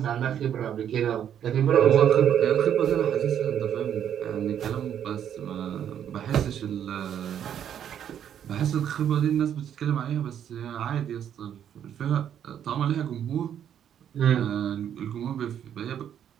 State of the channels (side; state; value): left; quieter; 9.5 dB